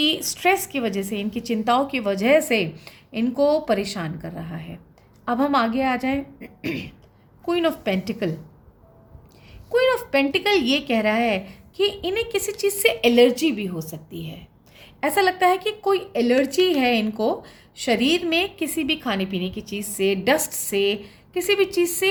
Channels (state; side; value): identical; both; correlation 1.00